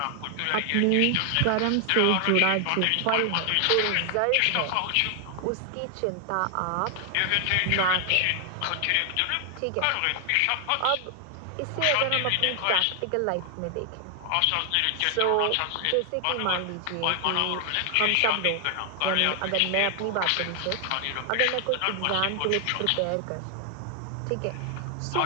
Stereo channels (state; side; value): different; both; correlation 0.00